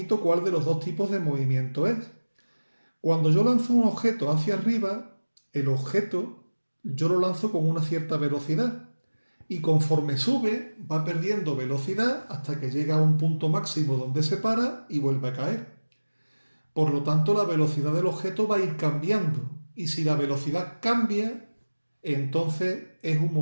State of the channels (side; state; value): both; inverted; correlation -1.00